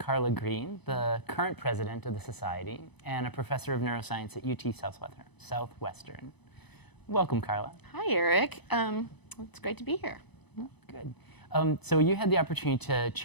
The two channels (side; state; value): right; late; 0.99 ms